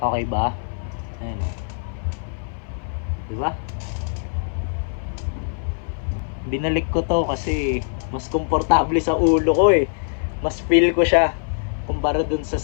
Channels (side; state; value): right; silent; 58 dB below the other